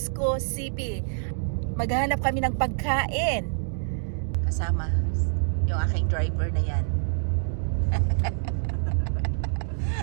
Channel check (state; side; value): silent; left; digital silence